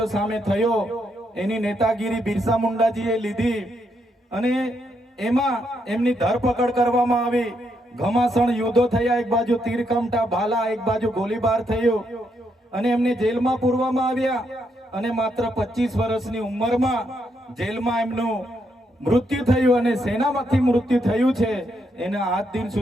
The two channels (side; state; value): both; normal; correlation 0.78